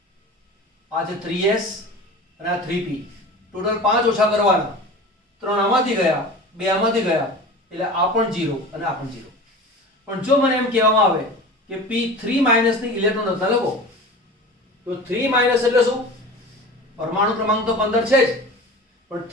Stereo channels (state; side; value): normal; both; correlation 0.35